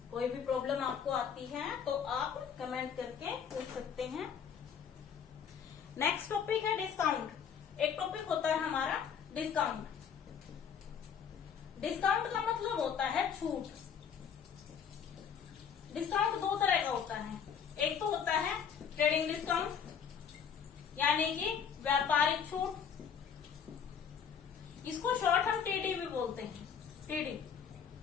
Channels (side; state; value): right; quieter; 7.4 dB